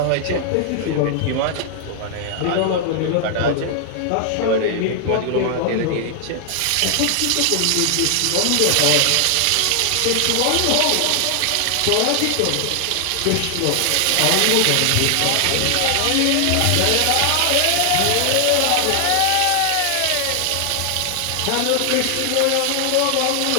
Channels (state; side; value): different; both; correlation 0.00